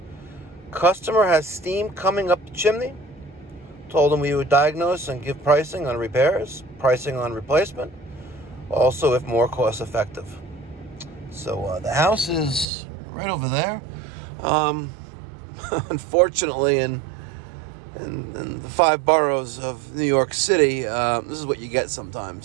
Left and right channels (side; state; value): left; drops out; at 12.7 s